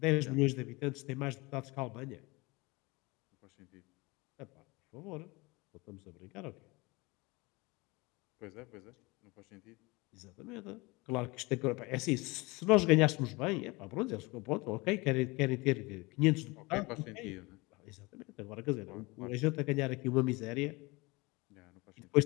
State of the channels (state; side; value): quieter; right; 24.6 dB